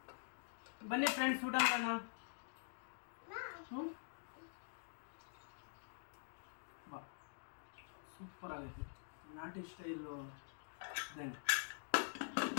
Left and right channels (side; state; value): right; silent; digital silence